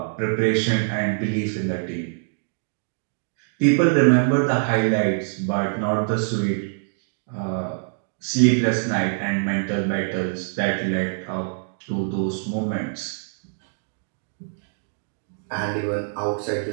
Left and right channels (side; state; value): left; silent; digital silence